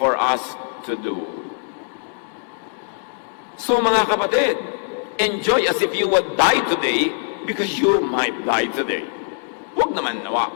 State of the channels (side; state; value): right; silent; digital silence